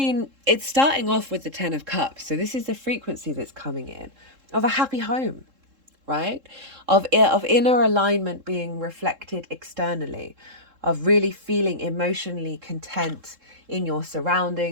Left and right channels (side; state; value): left; late; 3.7 ms